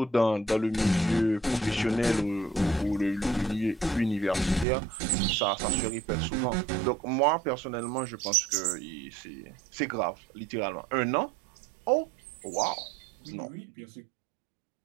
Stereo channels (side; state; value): left; drops out; at 4.7 s